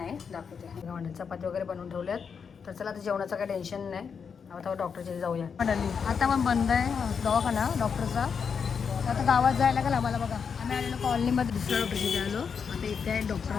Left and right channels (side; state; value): right; quieter; 6.3 dB